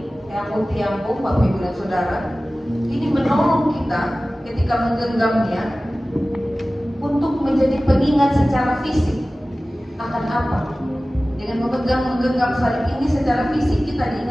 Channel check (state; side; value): normal; both; correlation 0.97